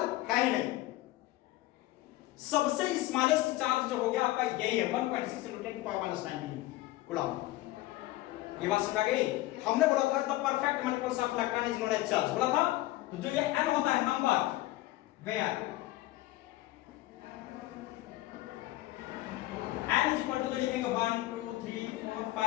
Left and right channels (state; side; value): quieter; right; 17.2 dB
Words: है ही नहीं। सबसे स्मॉलेस्ट चार्ज जो हो गया आपका यही है, 1.6 × 10⁻⁹ कूलम। ये बात समझ आ गई। हमने बोला था the perfect multiples of electron is known as charge, बोला था। तो जो ये n होता है number, where n is equal to जो लिखेंगे 1 2 3 4